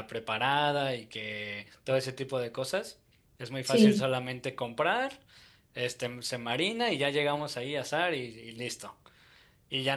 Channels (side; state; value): both; identical; correlation 1.00